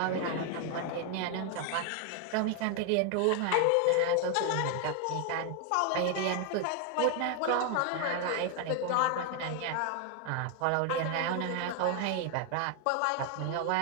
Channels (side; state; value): both; different; correlation 0.00